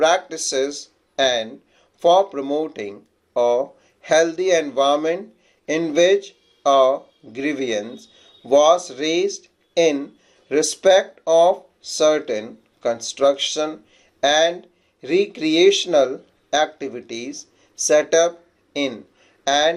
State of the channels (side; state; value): both; identical; correlation 1.00